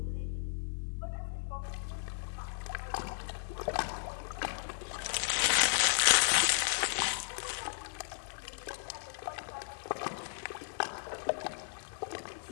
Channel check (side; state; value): right; silent; digital silence